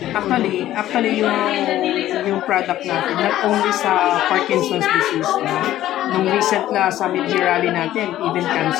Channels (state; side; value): quieter; right; 13.5 dB